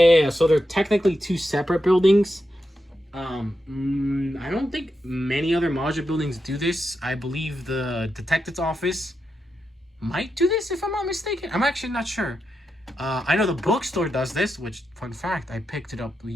so they're technically two separate buildings. I don't think many other modular buildings do this. I believe the detective's office might do this, if I'm not mistaken. I'm actually not sure. I know the bookstore does this, which, fun fact, I picked it up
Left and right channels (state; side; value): normal; both; correlation 0.86